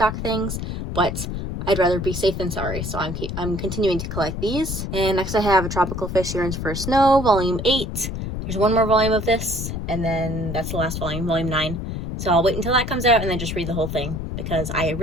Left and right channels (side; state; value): left; noise; rumble, 5 dB below the sound